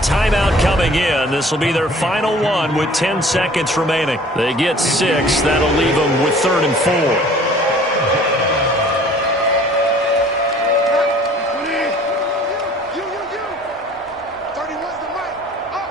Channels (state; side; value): normal; both; correlation 0.50